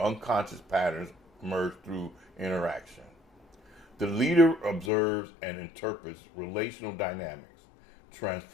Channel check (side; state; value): right; drops out; at 4.9 s